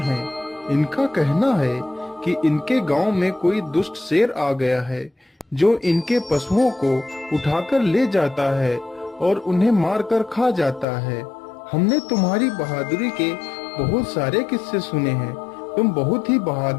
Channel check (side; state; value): right; drops out; at 10.9 s